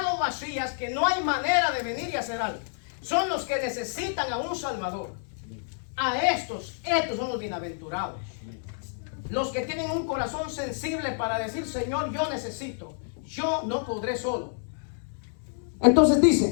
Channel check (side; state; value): right; silent; digital silence